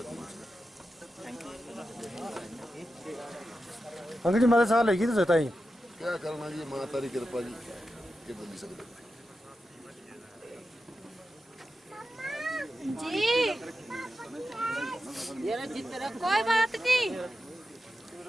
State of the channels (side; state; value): both; normal; correlation 0.90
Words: अंकल जी, माता साल है तो बताइए क्या करना जी, माता की कृपा जी के बोल सकते जी। कोई बात नहीं,